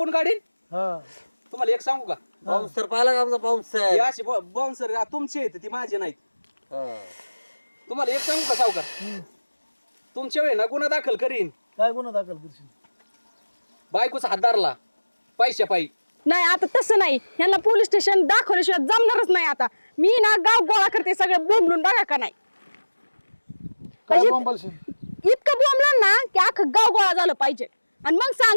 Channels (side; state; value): both; inverted; correlation -1.00